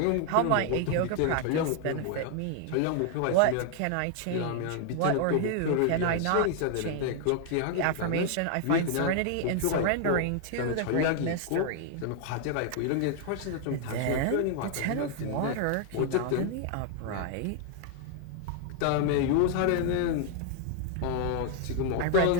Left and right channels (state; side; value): different; both; correlation 0.00